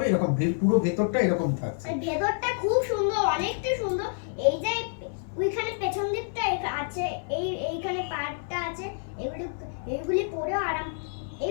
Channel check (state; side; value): silent; right; digital silence